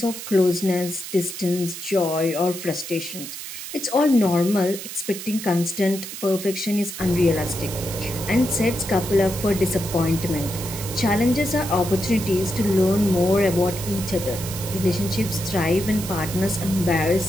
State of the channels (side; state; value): right; noise; hiss, 9 dB below the sound